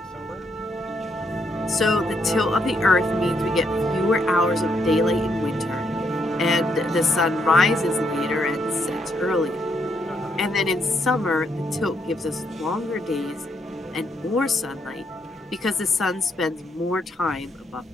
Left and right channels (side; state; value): both; normal; correlation 0.75